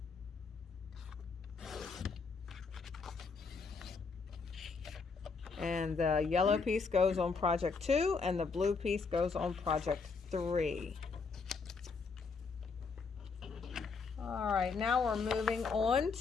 And the yellow piece goes on project 2 and the blue piece goes on project 3. All right, now we're moving on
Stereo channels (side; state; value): right; quieter; 4.8 dB